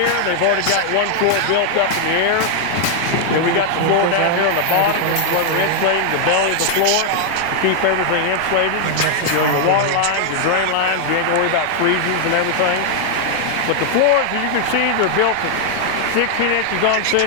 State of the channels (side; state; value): both; different; correlation 0.00